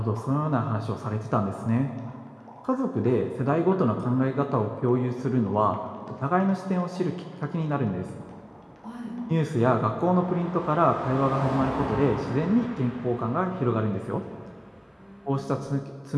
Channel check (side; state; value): both; identical; correlation 1.00